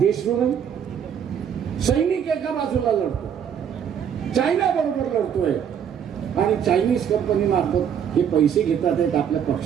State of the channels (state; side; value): quieter; left; 8.4 dB